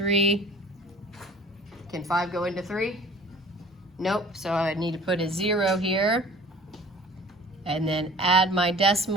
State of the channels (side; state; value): both; normal; correlation 0.46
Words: Can 5 go into 3? Nope, so I need to put a 0 here. And then add my